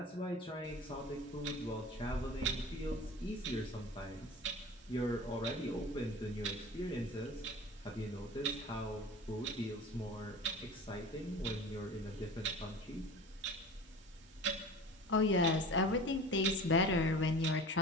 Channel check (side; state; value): both; normal; correlation 0.37